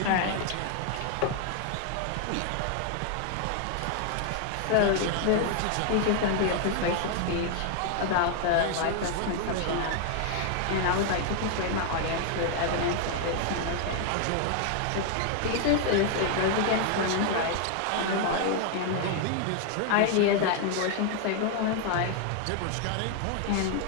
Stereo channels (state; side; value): different; both; correlation 0.00